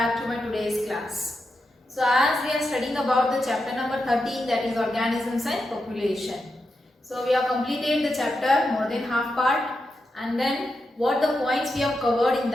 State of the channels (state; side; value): normal; both; correlation 0.87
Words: to my today's class. So as we are studying about the chapter number 13, that is organisms and population. So we have completed the chapter more than half part, and then what the points we have covered in